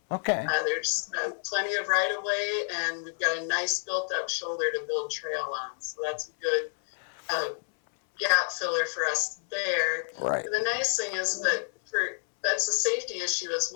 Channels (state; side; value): silent; right; 59 dB below the other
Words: Okay. There's plenty of right of way, and we've got a nice built up shoulder to build trail on. So that's a good gap filler for us there. Right. And the nice thing is that that's a safety issue as